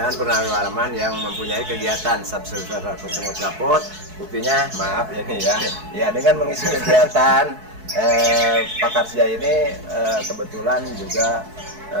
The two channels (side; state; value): left; late; 4.7 ms